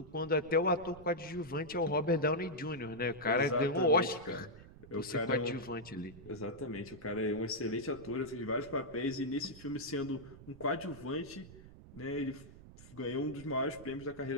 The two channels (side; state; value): right; noise; rumble, 18 dB below the sound